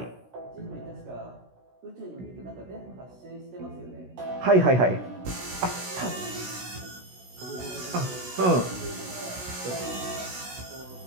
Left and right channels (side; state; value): left; late; 16 ms